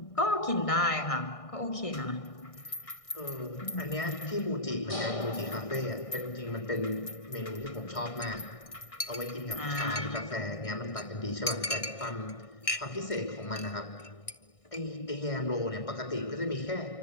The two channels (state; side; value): late; right; 1.6 ms